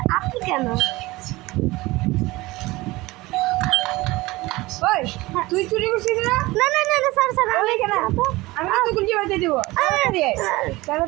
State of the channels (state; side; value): quieter; left; 20.5 dB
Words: আপনি কেন ওই তুই চুরি করছিস না না না না না স্যার স্যার আমি কেন আমি তো গুলি বাজে দেব